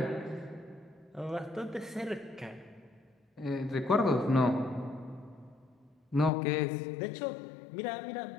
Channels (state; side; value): drops out; right; at 6.3 s